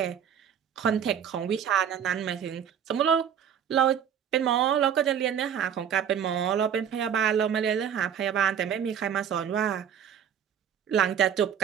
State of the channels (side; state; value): left; quieter; 8.6 dB